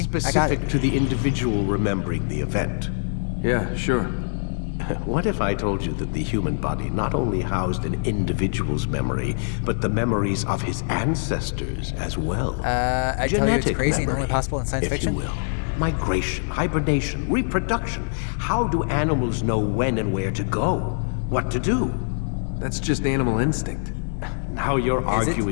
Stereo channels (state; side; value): silent; right; digital silence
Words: I got Specific it. to the individual remembering the event. Yeah, sure. What if I told you that the human body not only housed an individual's memory, but the memories of his ancestors as well? I tell you it's Genetic crazy and only memory, possible in science if fiction. you will. Migration, hibernation, reproduction. How do animals know when and where to go? What to do? That's just animal instinct. Now you're Is it?